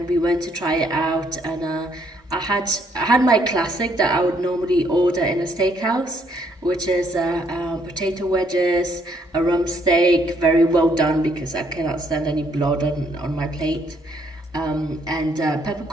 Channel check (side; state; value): both; normal; correlation 0.69